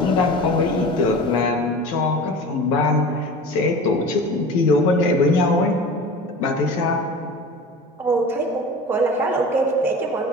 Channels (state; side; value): normal; both; correlation 0.36